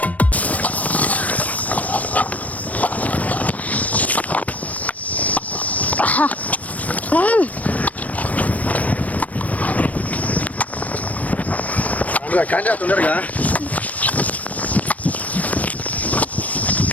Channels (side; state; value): right; late; 0.070 ms